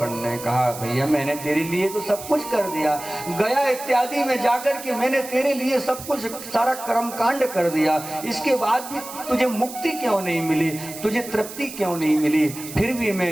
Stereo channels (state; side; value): noise; right; hiss, 12 dB below the sound